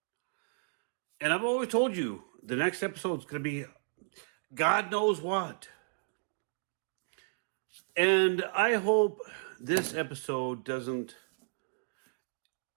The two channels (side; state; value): left; silent; digital silence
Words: And I've always told you, the next episode is going to be God Knows What. And I hope this episode doesn't